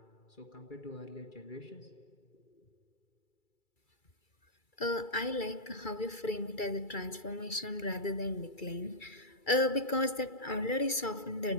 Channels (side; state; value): right; late; 2.3 ms